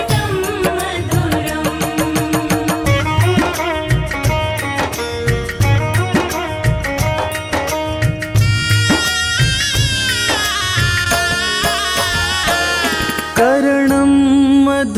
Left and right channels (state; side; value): identical; both; correlation 1.00